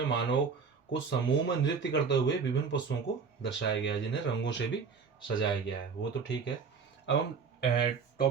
मानव को समूह में नृत्य करते हुए विभिन्न पशुओं को दर्शाया गया है, जिन्हें रंगों से भी सजाया गया है। वो तो ठीक है। अब हम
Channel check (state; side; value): quieter; left; 5.6 dB